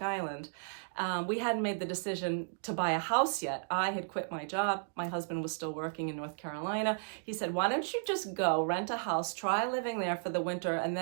Island. We hadn't made the decision to buy a house yet. I had quit my job. My husband was still working in North Carolina. He said, why don't you just go rent a house, try living there for the winter, and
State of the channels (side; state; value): left; silent; digital silence